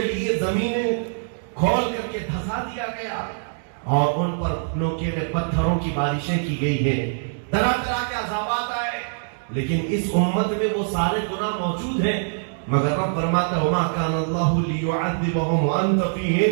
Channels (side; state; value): left; silent; digital silence